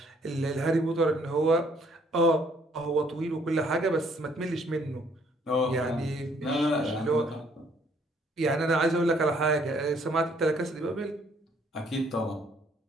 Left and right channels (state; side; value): normal; both; correlation 0.64